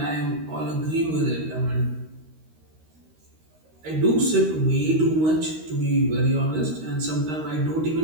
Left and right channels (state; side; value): late; left; 13 ms